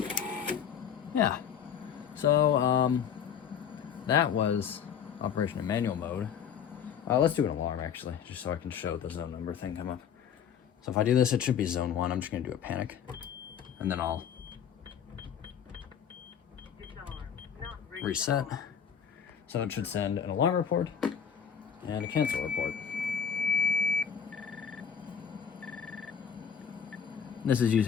Yeah, so that was operation in manual mode. Let's do an alarm actually, just so I can show the zone number thing come up. So if I do this, it should be zone 1. I'm just gonna do a panic, and then I'll reset. So it should send an alarm report and a cancel report. This is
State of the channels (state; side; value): quieter; right; 8.0 dB